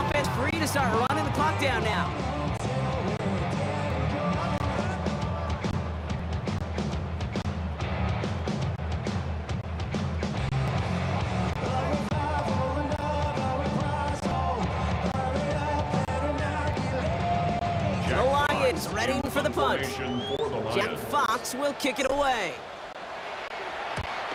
free to start running the clock down now. The Lions ready for the punt. Jack Fox will kick it away.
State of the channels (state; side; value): identical; both; correlation 1.00